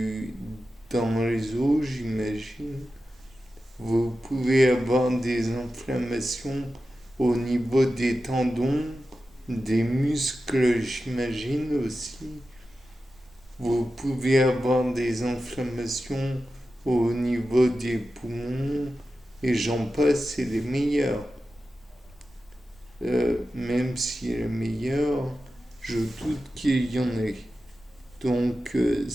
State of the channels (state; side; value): normal; both; correlation 0.92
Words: dans les os, j'imagine. Vous pouvez avoir des inflammations au niveau des tendons, des muscles, j'imagine aussi. Vous pouvez avoir des inflammations au niveau des poumons et j'en passe, c'est les meilleurs. Même si les meilleurs, je doute qu'il y en ait. Donc